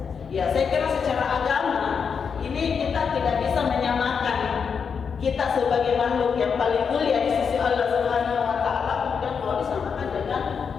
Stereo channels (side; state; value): right; quieter; 6.3 dB